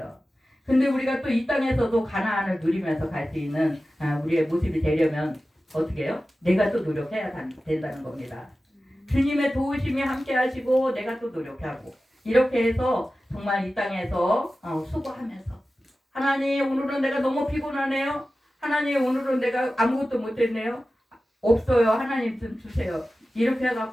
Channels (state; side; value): normal; both; correlation 0.95